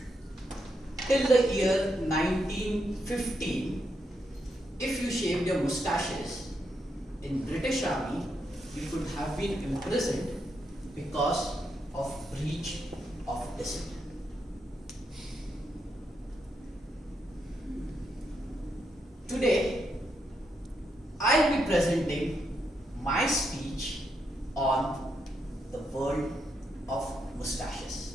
till the year 1915, if you shaved your mustaches in British Army, you could have been imprisoned because of breach of discipline. Today, I'll be presenting my speech on the world of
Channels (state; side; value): normal; both; correlation 0.81